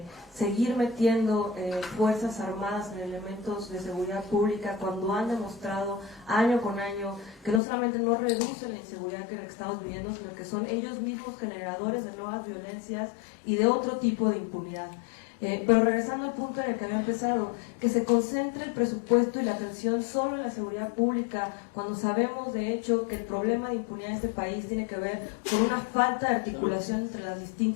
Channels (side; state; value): right; drops out; at 7.6 s